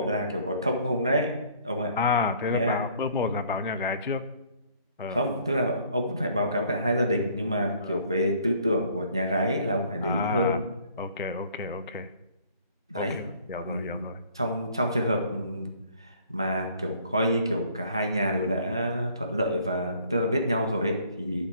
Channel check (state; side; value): inverted; both; correlation -0.58